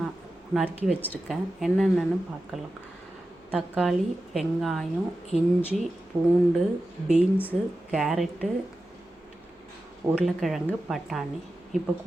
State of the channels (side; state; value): both; normal; correlation 0.93